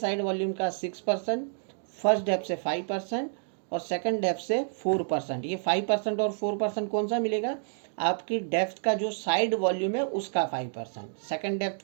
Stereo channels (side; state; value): left; silent; digital silence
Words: वॉल्यूम का 6%, फर्स्ट डेप्थ से 5% और सेकंड डेप्थ से 4%। ये 5% और 4% कौन सा मिलेगा, आपकी डेप्थ का जो साइड वॉल्यूम है उसका 5%, सेकंड